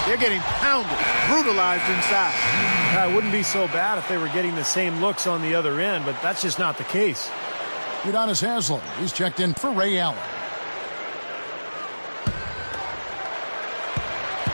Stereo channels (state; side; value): inverted; both; correlation -1.00